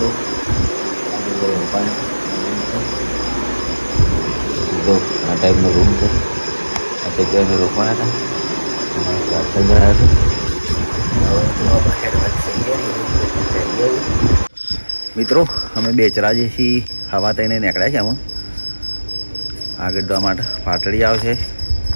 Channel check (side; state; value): both; inverted; correlation -1.00